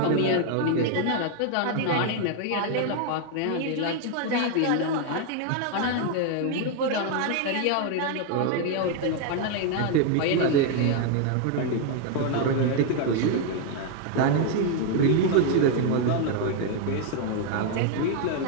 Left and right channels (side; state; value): both; different; correlation 0.00